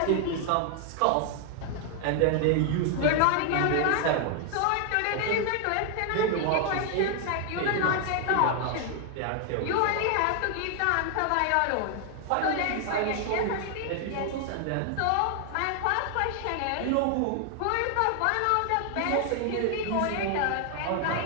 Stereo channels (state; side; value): different; both; correlation 0.00